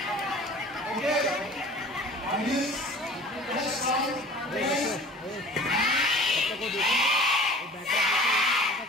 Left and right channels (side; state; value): both; normal; correlation 0.44